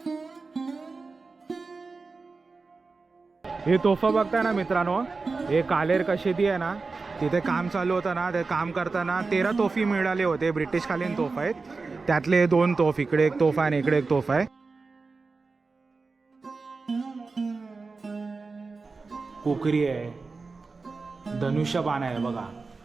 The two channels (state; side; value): quieter; left; 4.1 dB